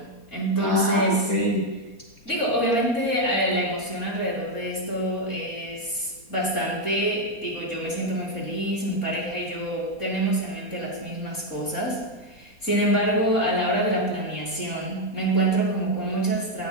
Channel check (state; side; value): late; right; 4.2 ms